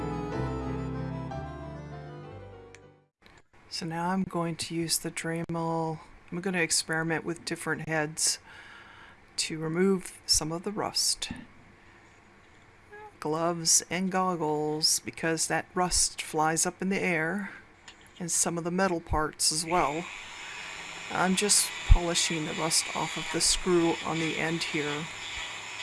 So now I'm going to use the Dremel. I'm going to experiment with different heads to remove some of the rust. Gloves and goggles, because that rust flies up in the air, and some of the metal parts as well. I'm just polishing the rust off of the screw on the end here.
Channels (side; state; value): both; identical; correlation 1.00